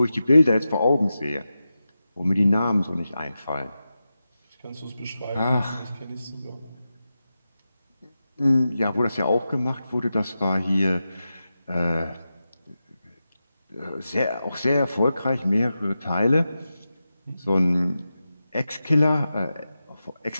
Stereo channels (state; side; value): inverted; both; correlation -0.91